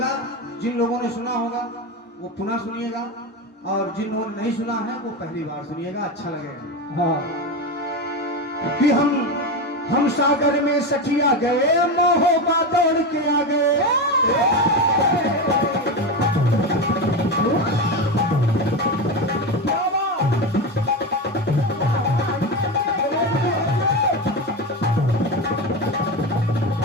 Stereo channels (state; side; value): normal; both; correlation 0.18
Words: जिन लोगों ने सुना होगा वो पुनः सुनिएगा, और जिन लोगों ने नहीं सुना है वो पहली बार सुनिएगा, अच्छा लगेगा। हाँ। कि हम सागर में सखिया गए, मोहबा दौड़ के आ गए।